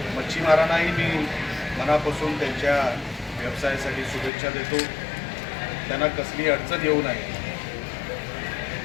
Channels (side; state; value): right; drops out; at 4.3 s